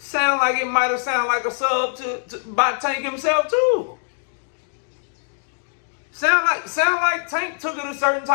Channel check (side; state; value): right; silent; digital silence